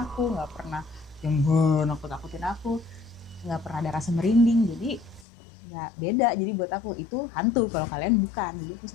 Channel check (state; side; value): drops out; right; at 5.2 s